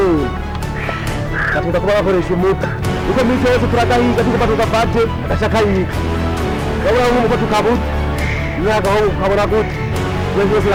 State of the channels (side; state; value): both; identical; correlation 1.00